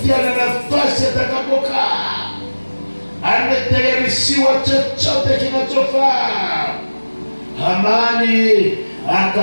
na nafasi atakapokaa, ametayarishiwa chochote kinachofaa. Hamani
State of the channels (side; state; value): both; inverted; correlation -1.00